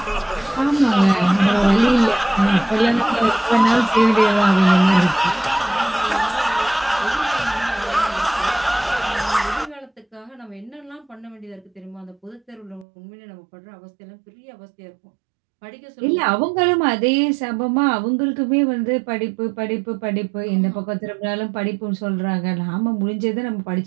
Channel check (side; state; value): left; drops out; at 12.9 s